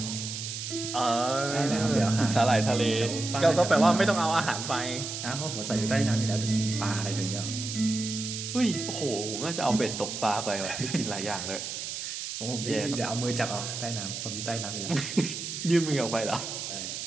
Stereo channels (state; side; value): noise; right; hiss, 6 dB below the sound